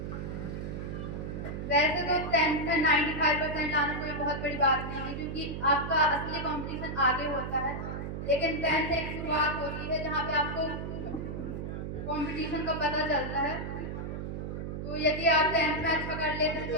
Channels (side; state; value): right; noise; hum, 5 dB below the sound